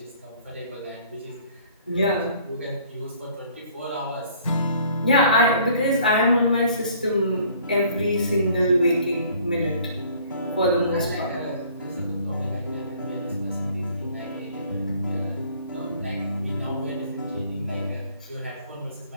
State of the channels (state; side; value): inverted; both; correlation -0.56